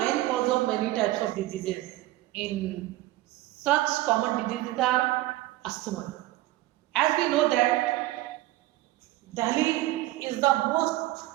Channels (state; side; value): quieter; left; 17.1 dB